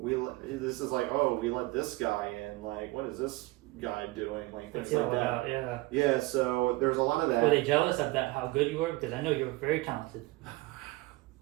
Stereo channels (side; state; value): left; quieter; 21.0 dB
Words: let this guy in. What is this guy doing? Things like that. Yeah. Yeah. So there's a lot of that. Were they jealous of that? How good you were? Because I know you were very talented.